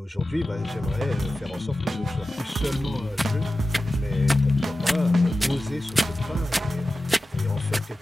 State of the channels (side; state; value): both; normal; correlation 0.94